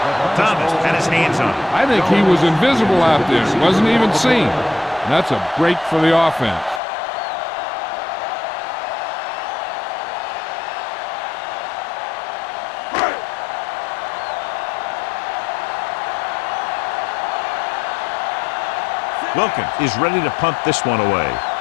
Thomas had his hands on it. I think he was invisible out there. Wasn't even seen. And that's a break for the offense. Wilkins is ready to punt this one away.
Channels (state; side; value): drops out; right; at 6.8 s